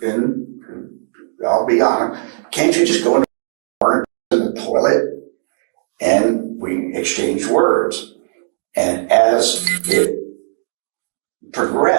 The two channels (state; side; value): silent; left; digital silence